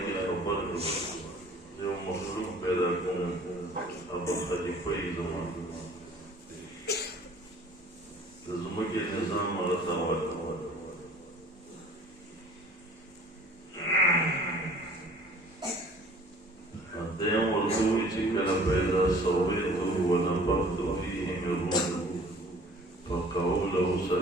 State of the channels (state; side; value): normal; both; correlation 0.50